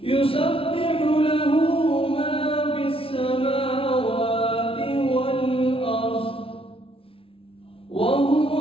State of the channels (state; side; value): late; right; 0.26 ms